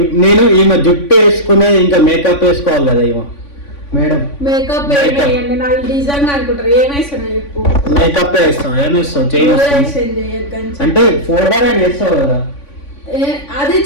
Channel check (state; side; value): late; right; 3.5 ms